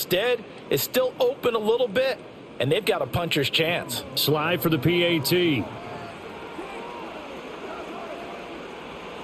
it's still open a little bit, and they've got a puncher's chance. Slide for the PAT.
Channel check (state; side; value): identical; both; correlation 1.00